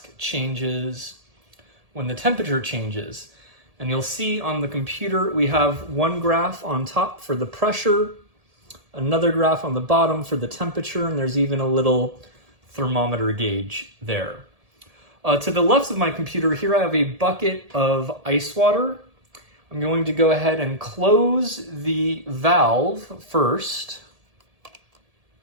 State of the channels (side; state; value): left; late; 1.7 ms